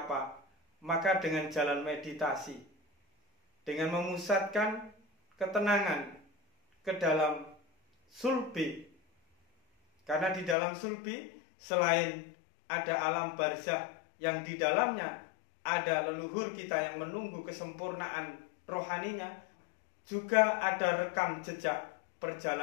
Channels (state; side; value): drops out; right; at 10.6 s